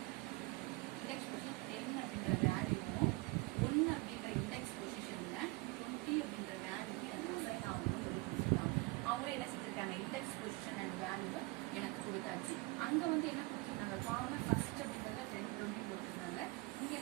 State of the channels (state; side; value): quieter; left; 23.7 dB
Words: 10 அப்படின்ற வேல்யூவும் 1 அப்படின்ற இண்டெக்ஸ் பொசிஷன்ல 20 அப்படின்ற வேல்யூவும் எனக்கு அசைன் ஆகணும்னு கொடுத்துருக்காங்க. அவங்களும் என்ன செஞ்சிருக்காங்க இண்டெக்ஸ் பொசிஷன் அண்ட் வேல்யூ எனக்கு கொடுத்தாச்சு. அங்க வந்து என்ன கொடுத்துருந்தாங்க காமன் ஃபர்ஸ்ட் அப்படின்றத 10 20 கொடுத்துருந்தாங்க. இங்க